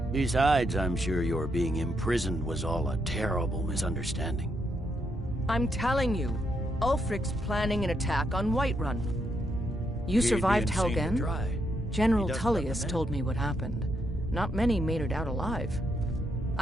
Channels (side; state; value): both; normal; correlation 0.79